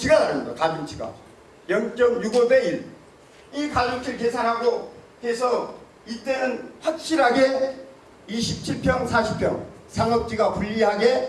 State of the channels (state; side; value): identical; both; correlation 1.00